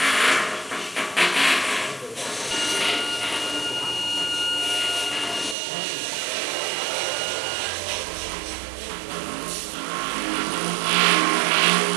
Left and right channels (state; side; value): drops out; left; at 5.6 s